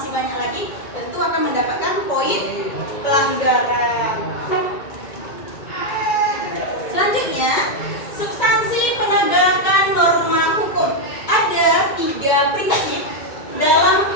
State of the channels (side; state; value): right; late; 2.3 ms